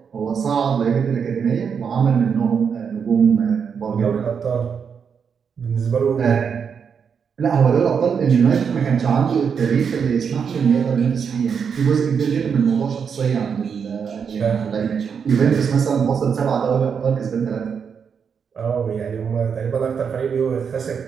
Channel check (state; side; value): quieter; left; 6.7 dB